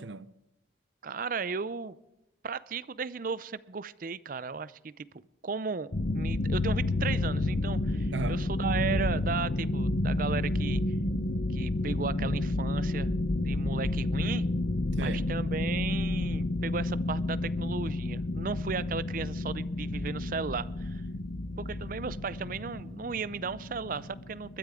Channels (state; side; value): normal; both; correlation 0.62